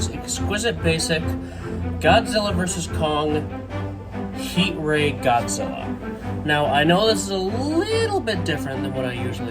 Exquisite Basic Godzilla vs. Kong Heat Ray Godzilla. Now, I know this is a little bit different than what I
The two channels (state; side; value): identical; both; correlation 1.00